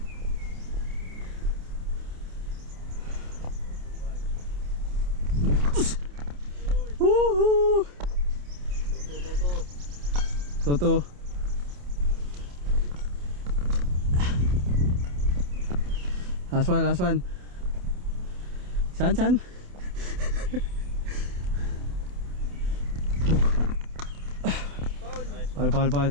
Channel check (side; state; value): left; late; 28 ms